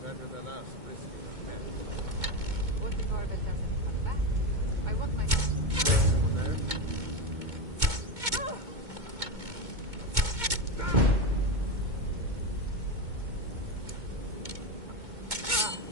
Better than us risking our neck. What if Arbel doesn't come back? I want my... Someone there?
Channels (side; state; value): left; late; 2.2 ms